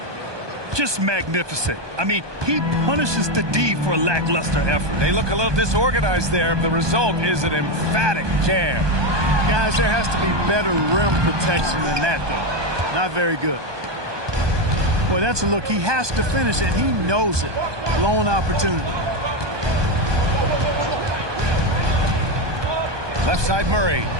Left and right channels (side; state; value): left; late; 1.2 ms